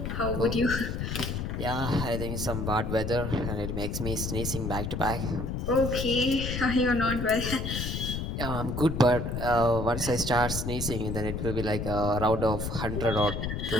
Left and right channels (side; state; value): left; noise; rumble, 3 dB below the sound